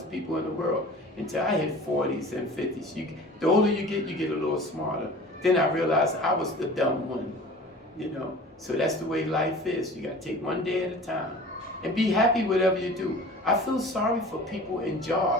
people in the world until I hit 40s and 50s. The older you get a little smarter. Then I realized I was the dumb one, you know. So that's the way life is. You got to take one day at a time and be happy whatever you do. I feel sorry for people in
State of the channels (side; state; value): both; normal; correlation 0.41